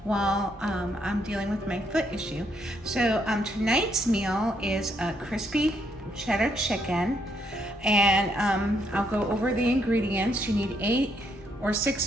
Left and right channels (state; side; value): normal; both; correlation 0.74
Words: while I'm dealing with my foot issue. So tonight's meal is a crispy cheddar chicken, and I'll go over the ingredients. You need 8 or